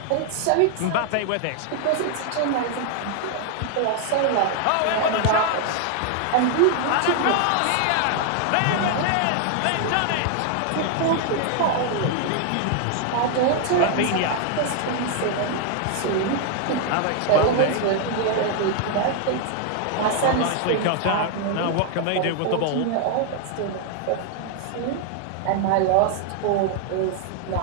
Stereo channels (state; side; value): different; both; correlation 0.00